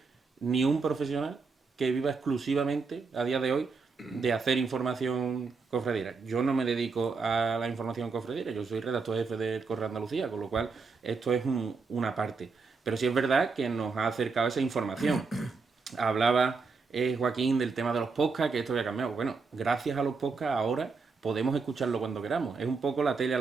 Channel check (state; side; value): quieter; left; 4.6 dB